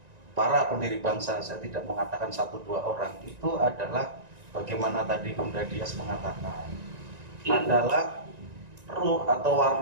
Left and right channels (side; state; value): left; late; 1.9 ms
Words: para pendiri bangsa, saya tidak mengatakan 1-2 orang, itu adalah bagaimana tadi Bunda Dias mengatakan, adalah ruh atau